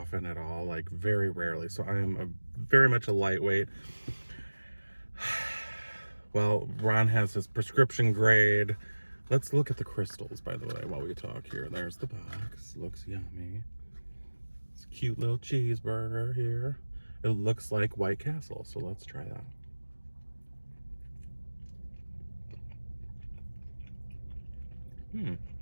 at all, like very rarely. So I am very much a lightweight. Well, Ron has his prescription grade. Let's look at the crystals, by the way, while we talk here. There's the box. Looks yummy. It's a cute little cheeseburger here. It looks like White Castle, so let's try that.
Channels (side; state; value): both; inverted; correlation -1.00